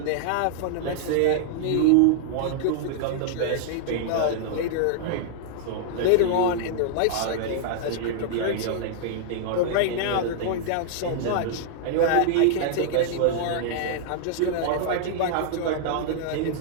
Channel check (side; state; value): both; different; correlation -0.01